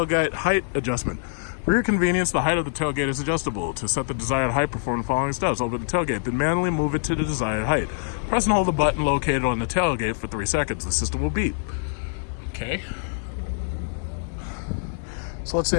height adjustment. For your convenience, the height of the tailgate is adjustable. To set the desired height, perform the following steps. Open the tailgate, then manually move it to the desired height. Press and hold the button located on the tailgate for 3 seconds. The system will beep. Okay. So let's say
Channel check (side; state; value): right; silent; digital silence